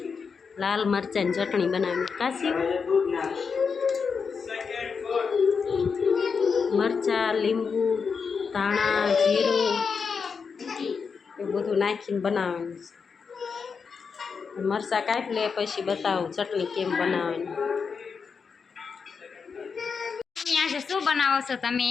લાલ મરચાંની ચટણી બનાવવાની. કાશી મરચાં, લીંબુ, ધાણા, જીરું એ બધું નાખીને બનાવવાનું છે. મરચાં કાપી લે પછી બતાવું ચટણી કેમ બનાવવાની. આજે શું બનાવો છો તમે?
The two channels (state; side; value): quieter; right; 5.6 dB